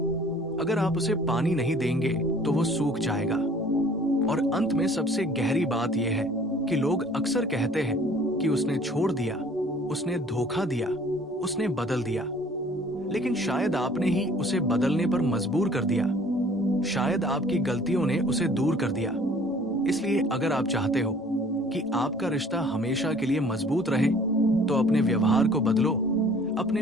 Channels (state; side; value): normal; both; correlation 0.53